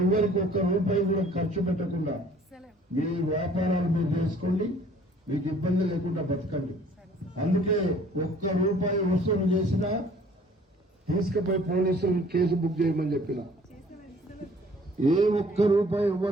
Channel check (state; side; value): normal; both; correlation 0.55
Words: ఎవరికి ఒక్క రూపాయి కూడా ఖర్చు పెట్టకుండా మీ వ్యాపారాలు మీరు చేసుకోండి, మీకు ఇబ్బంది లేకుండా బతకండి. అందుకే ఒక్క రూపాయి వసూలు చేసినా తీసుకుపోయి పోలీసులు కేసు బుక్ చేయమని చెప్పిన. ఏ ఒక్క రూపాయి